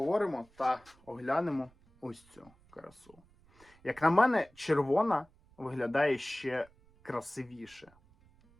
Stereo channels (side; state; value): right; noise; rumble, 29 dB below the sound